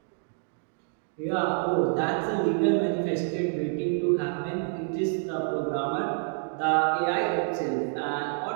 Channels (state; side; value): silent; left; 57 dB below the other